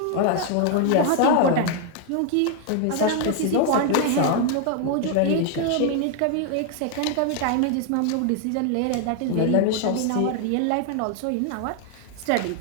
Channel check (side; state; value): both; different; correlation 0.00